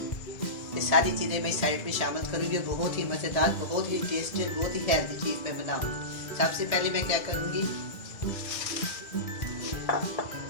ये सारी चीज़ें मैं सैलेड में शामिल करूँगी। बहुत ही मज़ेदार, बहुत ही टेस्टी, बहुत ही हेल्दी चीज़ मैं बनाऊँगी। सबसे पहले मैं क्या करूँगी,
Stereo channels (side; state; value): right; late; 2.1 ms